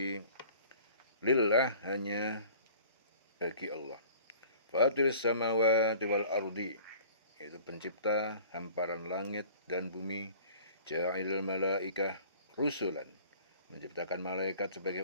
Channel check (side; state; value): both; inverted; correlation -0.48